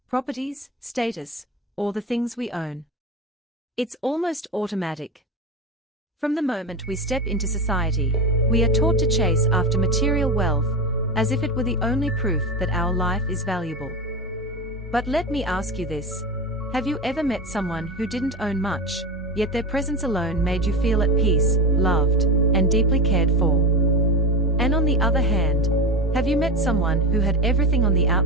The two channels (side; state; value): both; normal; correlation 0.21